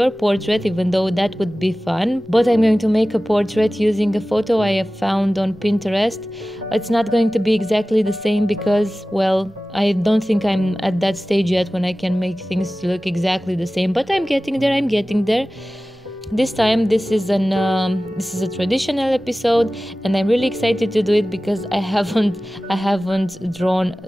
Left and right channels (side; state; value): both; normal; correlation 0.96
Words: portrait, even though that would be fun, but I'm going to make a portrait using a photo I have found on Pinterest. It's not going to be exactly the same because, well, I don't think I'm at that stage yet when I can make things look exactly the same, but I'm getting there. This time this is a traditional episode and I'm really excited to do it because I haven't drawn